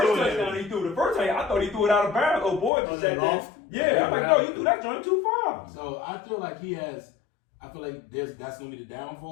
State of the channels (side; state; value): right; drops out; at 2.7 s